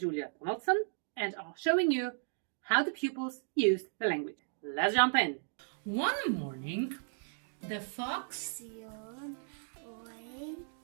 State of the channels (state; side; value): silent; left; digital silence